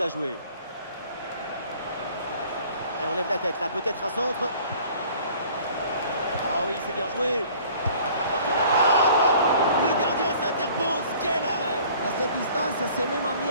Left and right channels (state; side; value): inverted; both; correlation -0.51